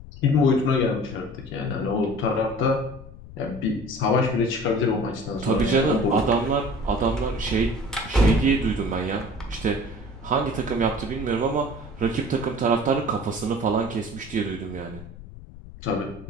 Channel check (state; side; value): noise; left; rumble, 16 dB below the sound